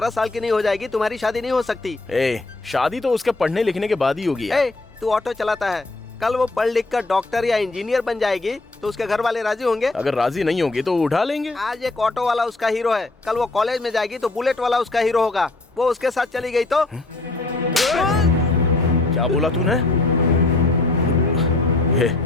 साल की नहीं हो जाएगी तुम्हारी शादी नहीं हो सकती। शादी तो उसके पढ़ने लिखने के बाद ही होगी यार। तू ऑटो चलाता है, कल वो पढ़ लिख कर डॉक्टर या इंजीनियर बन जाएगी तो उसके घर वाले राजी होंगे? अगर राजी नहीं होंगे तो उठा लेंगे। आज एक ऑटो वाला उसका हीरो है, कल वो कॉलेज में जाएगी तो बुलेट वाला उसका हीरो होगा। वो उसके साथ चली गई तो? क्या बोला तूने?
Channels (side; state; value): right; quieter; 3.1 dB